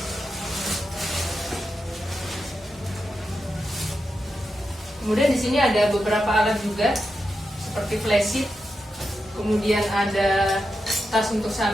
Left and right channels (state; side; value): normal; both; correlation 0.88